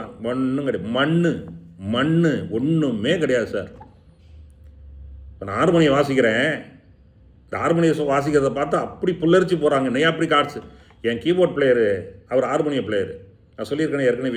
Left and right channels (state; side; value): identical; both; correlation 1.00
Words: ஒன்றும் கிடையாது, மண் ஒன்றுமே கிடையாது சார். இப்போ நான் ஹார்மோனியம் வாசிக்கிறேன், இந்த ஹார்மோனியம் வாசிக்கிறத பார்த்து அப்படி புல்லரிச்சு போகிறாங்க, நெய் அப்படி கார்ட்ஸ். என் கீபோர்ட் பிளேயரு அவர் ஹார்மோனியம் பிளேயரு, நான் சொல்லியிருக்கேன் ஏற்கனவே,